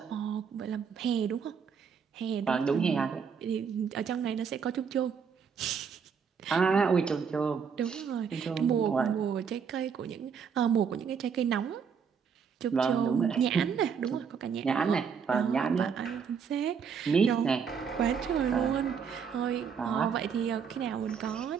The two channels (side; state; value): left; quieter; 6.6 dB